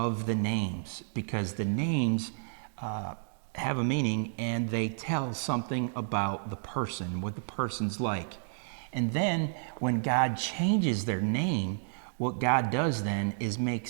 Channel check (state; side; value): silent; left; digital silence